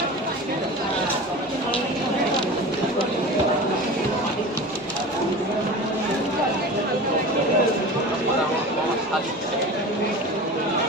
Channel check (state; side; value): normal; both; correlation 0.33